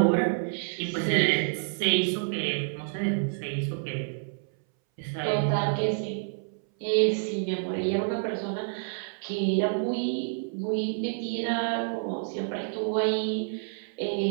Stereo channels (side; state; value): left; silent; 59 dB below the other